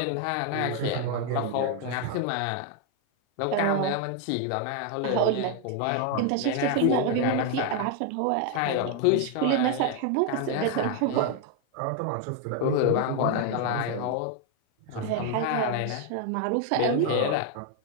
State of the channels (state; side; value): different; both; correlation 0.01